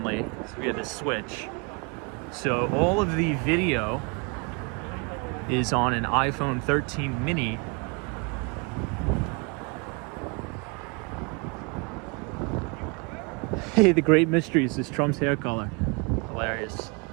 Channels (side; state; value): left; quieter; 31.0 dB